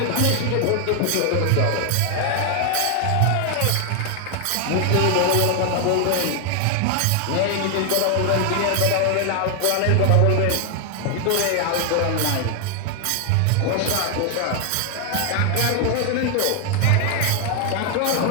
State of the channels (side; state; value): both; different; correlation 0.00